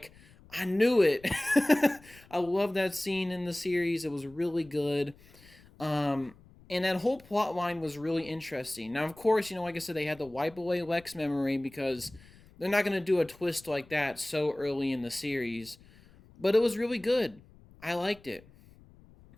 "I knew it." I love that scene in the series. It was really good. And that whole plot line was really interesting. Now, of course, like I said, they had to wipe away Lex memory because they're not going to do a twist like that so early in the series. But it was really good. I liked it.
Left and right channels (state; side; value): noise; left; rumble, 25 dB below the sound